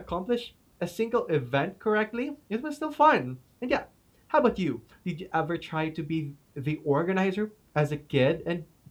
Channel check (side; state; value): both; identical; correlation 1.00